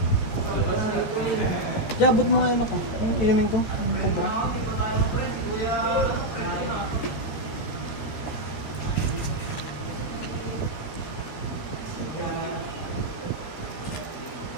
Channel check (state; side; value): late; right; 13 ms